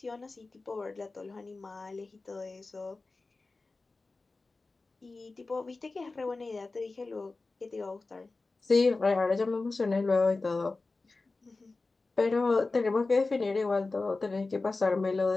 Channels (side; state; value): right; quieter; 3.6 dB